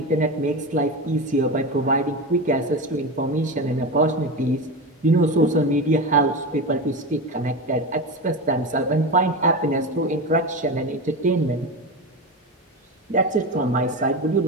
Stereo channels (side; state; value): both; normal; correlation 0.22